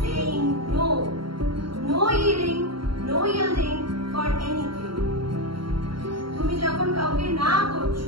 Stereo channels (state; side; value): late; left; 0.73 ms